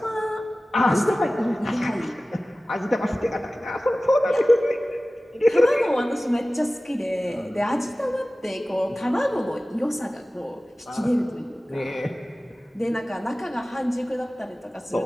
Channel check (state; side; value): normal; both; correlation 0.97